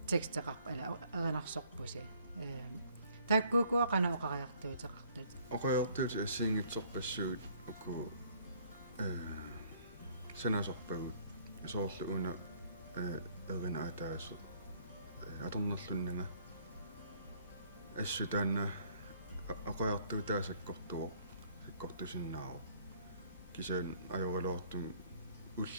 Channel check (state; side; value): inverted; both; correlation -0.61